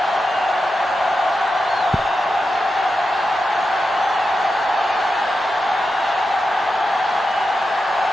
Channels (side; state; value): both; normal; correlation 0.89